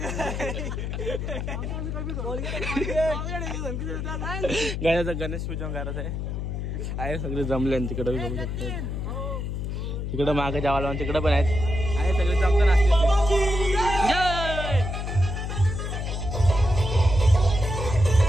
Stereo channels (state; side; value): noise; left; hum, 4 dB below the sound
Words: गाण्याचं गणेश पूजन करायचं आहे. सगळे जमले तिकडे बघू शकतो. तिकडं मागे जावाला तिकडं पण आहेत. आहे सगळे जमताना